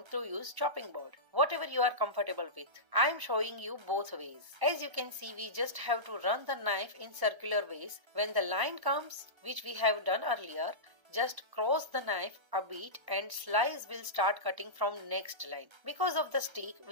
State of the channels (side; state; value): left; late; 1.3 ms